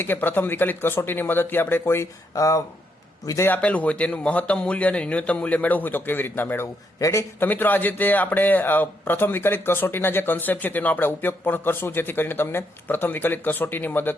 કે પ્રથમ વિકલિત કસોટીની મદદથી આપણે કોઈ વિધેય આપેલું હોય તેનું મહત્તમ મૂલ્ય અને ન્યૂનતમ મૂલ્ય મેળવવું હોય તો કેવી રીતના મેળવવું. રેડી? તો મિત્રો આજે તે આપણે પ્રથમ વિકલિત કસોટીના જે કન્સેપ્ટ છે તેનો આપણે ઉપયોગ પણ કરશું, જેથી કરીને તમને પ્રથમ વિકલિત કસોટીની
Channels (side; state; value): both; normal; correlation 0.77